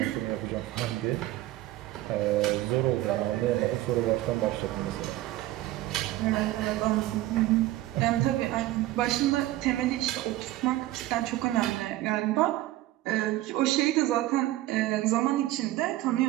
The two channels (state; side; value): quieter; left; 15.9 dB